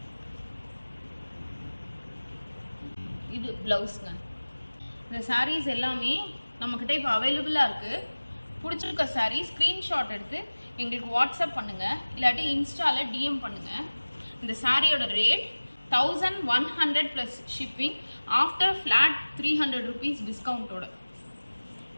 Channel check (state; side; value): inverted; both; correlation -1.00